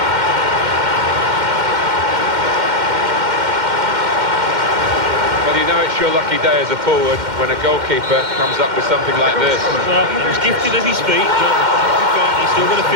Well, you know it's your lucky day as a forward when a goalkeeper comes up with something like this. Well, he was gifted at his feet, but he's still going to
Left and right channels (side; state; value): left; late; 2.1 ms